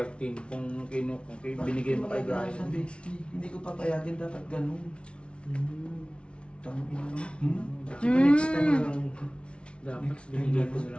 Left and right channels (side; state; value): right; late; 0.059 ms